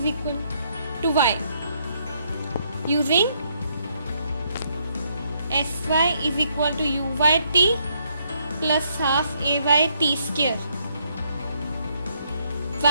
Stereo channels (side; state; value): both; inverted; correlation -0.73